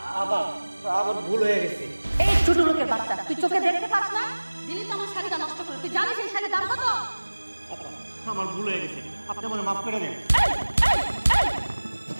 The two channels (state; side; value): inverted; both; correlation -1.00